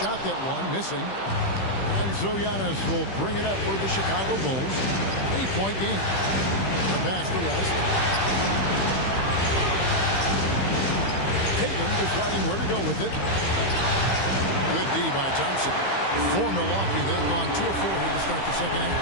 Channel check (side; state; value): right; late; 15 ms